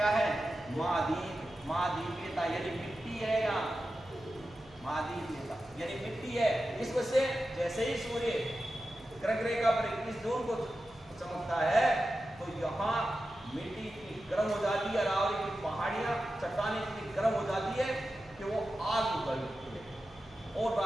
है? महाद्वीप, महाद्वीपीयता, यानी मिट्टी है यहाँ, महाद्वीपीयता यानी मिट्टी है। इस वजह से जैसे ही सूर्य ग्रह रेखा पर 21 जून को चमकता है तो यहाँ मिट्टी इतनी गर्म हो जाती है, अरावली की पहाड़ियाँ चट्टानें इतनी गर्म हो जाती है कि वो आग उगल उठती है और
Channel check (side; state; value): right; noise; hum, 25 dB below the sound